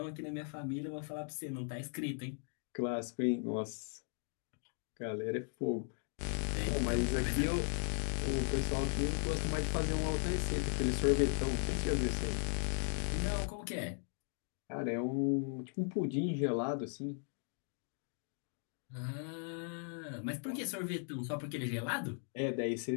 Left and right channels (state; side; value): silent; right; 53 dB below the other